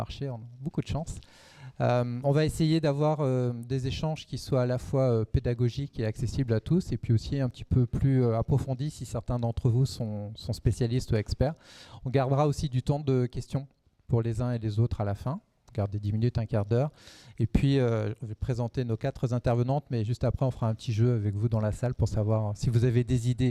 on a beaucoup de chance. On va essayer d'avoir des échanges qui soient à la fois pédagogiques et accessibles à tous, et puis aussi un petit peu plus approfondis si certains d'entre vous sont spécialistes ou experts. On gardera aussi du temps de questions pour les uns et les autres à la fin. On garde des 10 minutes, un quart d'heure. Et puis, je vais présenter nos 4 intervenantes, mais juste après, on fera un petit jeu avec vous dans la salle pour savoir si vous avez des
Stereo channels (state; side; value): identical; both; correlation 1.00